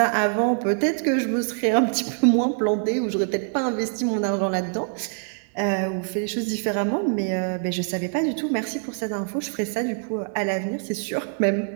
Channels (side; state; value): left; silent; 59 dB below the other